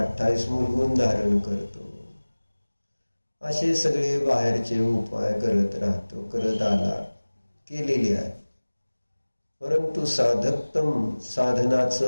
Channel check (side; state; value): both; inverted; correlation -1.00